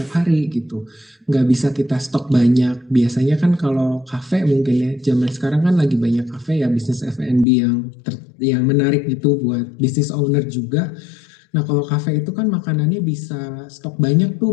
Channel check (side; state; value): right; drops out; at 7.5 s